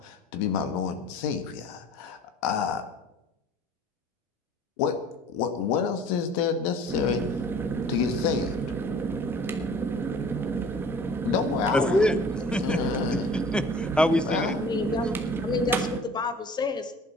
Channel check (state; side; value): normal; both; correlation 0.47